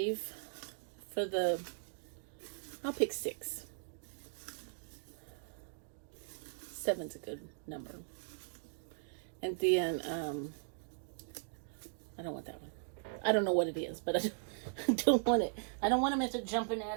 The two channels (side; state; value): left; silent; digital silence